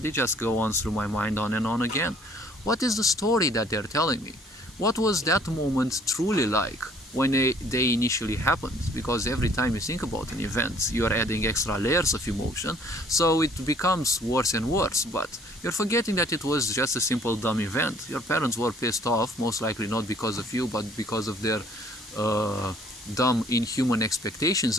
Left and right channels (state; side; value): normal; both; correlation 0.58